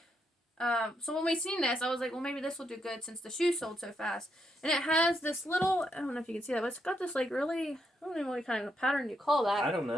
so when we seen this, I was like, well, maybe this will do good since the shoes sold so fast. And it has this little, I don't know if you can see that, but it's got this really, I don't know what kind of pattern you call that. I don't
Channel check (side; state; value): both; normal; correlation 0.79